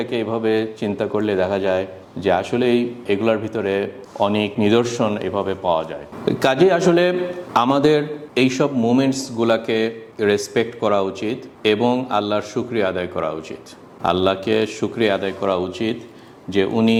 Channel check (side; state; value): both; identical; correlation 1.00